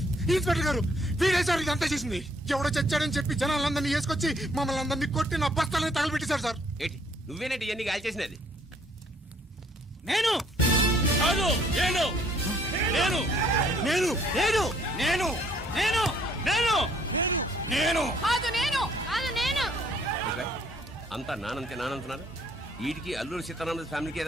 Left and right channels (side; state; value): both; normal; correlation 0.64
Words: ఇన్స్పెక్టర్ గారు, వీడే సార్ ఇదంతా చేసింది. ఎవడో చచ్చాడని చెప్పి జనాలందరినీ వేసుకొచ్చి మమ్మల్ని అందరినీ కొట్టి నా బస్తాలని తగలబెట్టేశారు సార్. ఏంటి నువ్వేనండి ఇవన్నీ గాలి చేసినది? నేను కాదు నేను నేను నేను నేను నేను నేను నేను నేను కాదు నేను కాదు నేను అంతా నానంతే నానంటున్నారు. వీటికి అల్లూరు సీతారామరాజు ఫ్యామిలీకి